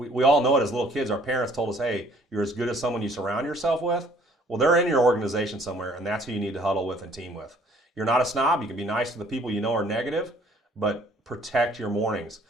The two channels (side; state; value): both; normal; correlation 0.59